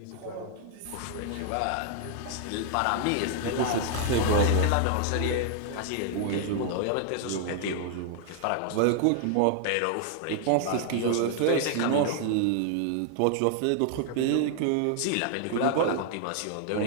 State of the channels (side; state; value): both; different; correlation 0.00